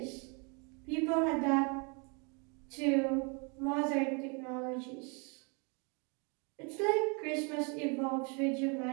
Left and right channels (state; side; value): quieter; left; 34.0 dB